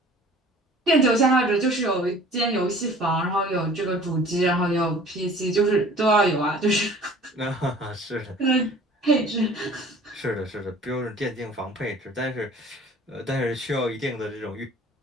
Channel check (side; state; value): both; normal; correlation 0.48